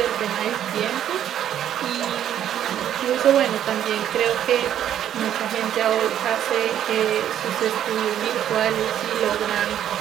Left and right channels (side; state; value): left; quieter; 10.6 dB